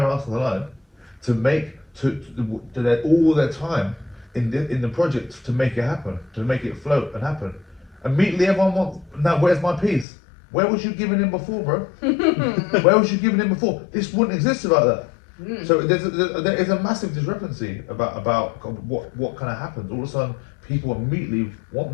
ass on the line to make, all their time in the project to make it happen, to make it float and happen. Immediately everyone wants, now where's my piece? Where was you giving in before, bro? Where was you giving in before? This wouldn't exist without that. So there is a massive discrepancy about what kind of happens. All of a sudden, people immediately want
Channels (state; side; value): drops out; right; at 10.1 s